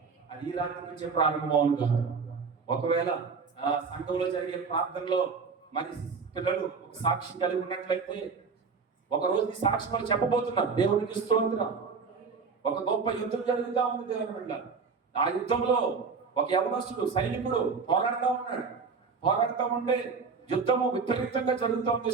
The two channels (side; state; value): left; quieter; 5.1 dB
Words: అది ఈ రాత్రి నుంచే ప్రారంభం అవును గాక. ఒకవేళ సంఘంలో జరిగే ప్రార్థనలో మరి పిల్లలు ఒక సాక్ష్యం కలిగి ఉన్నట్లయితే ఒక రోజు ఈ సాక్ష్యం వాళ్ళు చెప్పబోతున్నారు. దేవునికి స్తోత్రం. ఒక గొప్ప యుద్ధం జరుగుతూ ఉంది దేవుని బిడ్డ. ఆ యుద్ధంలో ఒక యవనస్తుడు సైనికుడు పోరాడుతూ ఉంటే యుద్ధము విపరీతంగా జరుగుతూ ఉంది,